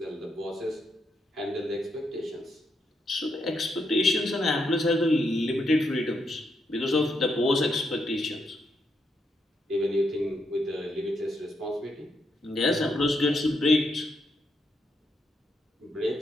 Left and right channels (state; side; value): normal; both; correlation 0.79